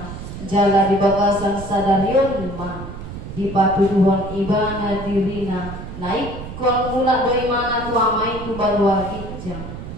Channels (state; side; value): noise; right; rumble, 10 dB below the sound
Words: jala di bagasan sadarion ma di patuduhon ibana dirina naik kon mula do imana tu amai tu balua gijang